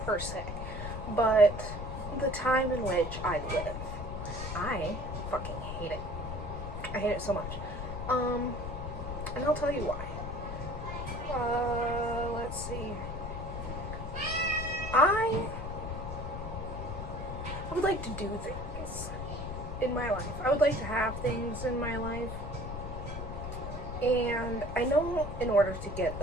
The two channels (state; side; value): noise; left; rumble, 6 dB below the sound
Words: per se, but the time in which I live. I fucking hate it. I hate it so much. And I'll tell you why. Let's see. I would like to do things in my life. I would like to have things in my life. And I know in order to get